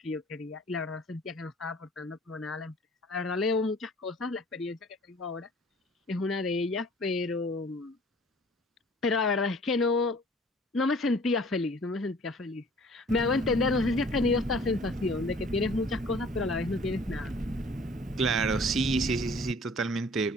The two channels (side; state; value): both; normal; correlation 0.51